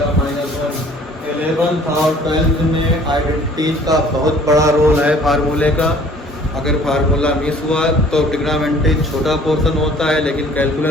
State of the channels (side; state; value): both; normal; correlation 0.53